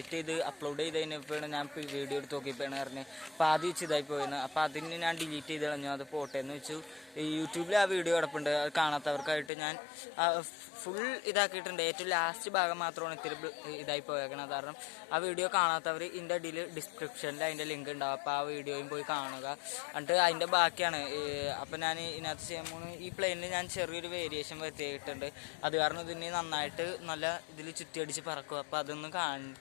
ചെയ്ത് അപ്ലോഡ് ചെയ്തതിനപ്പോഴാണ് ഞാൻ വീഡിയോ എടുത്ത് നോക്കിയപ്പോഴാണ് പറഞ്ഞത് അപ്പോൾ ആദ്യം വെച്ച് ഇതായി പോയിരുന്നു. അപ്പോൾ അതിന് ഞാൻ ഡിലീറ്റ് ചെയ്ത് കളഞ്ഞു. അത് പോട്ടെ എന്ന് വെച്ചു. യൂട്യൂബിൽ ആ വീഡിയോ കിടപ്പുണ്ട്. അത് കാണാത്തവർക്കായിട്ട് ഞാൻ ഫുൾ ഇതാക്കിയിട്ടുണ്ട്. ഏറ്റവും ലാസ്റ്റ് ഭാഗം മാത്രമാണ് ഇത്തിരി ഇതായി പോയേക്കണത്. കാരണം ആ വീഡിയോ കാണാത്തവർ ഇതിൻ്റെ അടിയിൽ ഡിസ്ക്രിപ്ഷനിൽ അതിൻ്റെ ലിങ്ക് ഉണ്ടാവും. അപ്പോൾ ആ വീഡിയോയും പോയി കാണുക. എന്നിട്ട് അതിൻ്റെ ബാക്കിയാണ്. അപ്പോൾ ഞാൻ ഇതിനകത്ത് ചെയ്യുമ്പോൾ ഈ പ്ലെയിനിൽ ഞാൻ ചെറിയൊരു വേരിയേഷൻ വരുത്തിയിട്ടുണ്ട്. അത് കാരണം ഇതിന് നന്നായിട്ട് നല്ല ഇതിൽ ചുറ്റിയടിച്ച് പറക്കും. അപ്പോൾ അതൊന്ന്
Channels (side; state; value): right; drops out; at 9.5 s